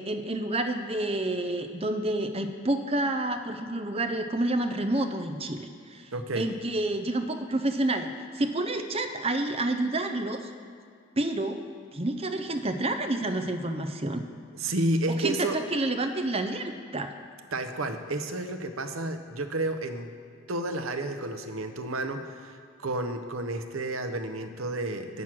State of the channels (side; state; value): both; normal; correlation 0.46